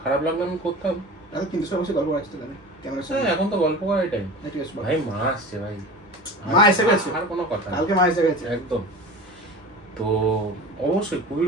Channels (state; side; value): normal; both; correlation 0.34